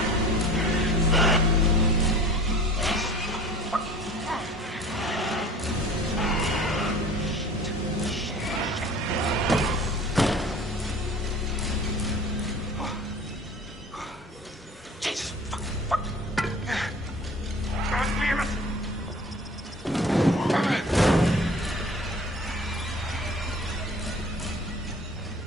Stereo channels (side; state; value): both; normal; correlation 0.44